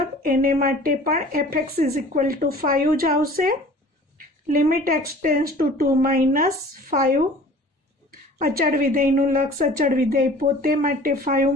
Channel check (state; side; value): normal; both; correlation 0.46